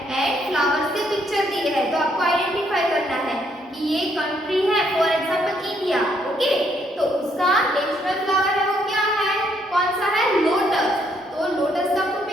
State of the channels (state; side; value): normal; both; correlation 0.71